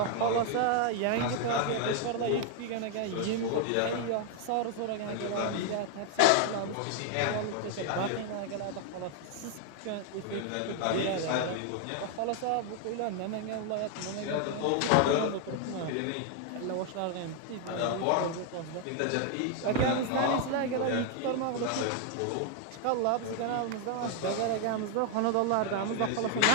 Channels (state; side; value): different; both; correlation 0.00